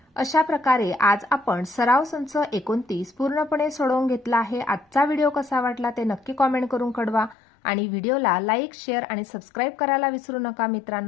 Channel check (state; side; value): drops out; right; at 7.4 s